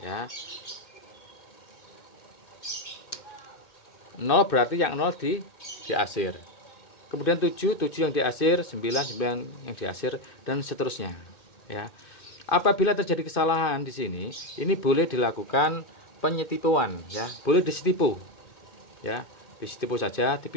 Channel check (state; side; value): late; right; 2.5 ms